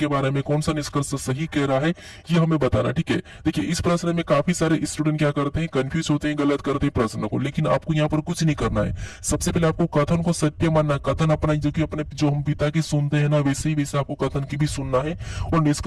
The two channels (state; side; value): identical; both; correlation 1.00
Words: बारे में कौन सा निष्कर्ष सही कह रहा है, ये हमें बताना। ठीक है, देखिए इस प्रश्न में काफी सारे स्टूडेंट क्या करते हैं, कंफ्यूज होते हैं, गलत करते हैं प्रश्न को, लेकिन आपको यहाँ पर कुछ नहीं करना है। सबसे पहले आपको कथन को सत्य मानना है, कथन अपना जो कि अपने जो हम पिता की सुनते हैं ना, वैसे ही वैसे आपको कथन की भी सुनना है, और